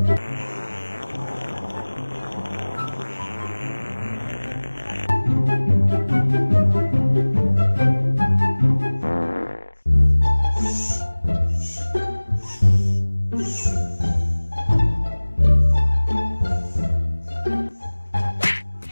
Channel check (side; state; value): both; inverted; correlation -1.00